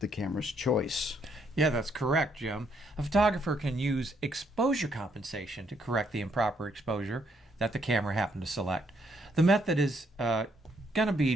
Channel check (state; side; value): normal; both; correlation 0.72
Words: camera's choice. Yeah, that's correct, Jim. A photographer can use exposure compensation to correct the improper exposure that the camera happened to select. The method is going to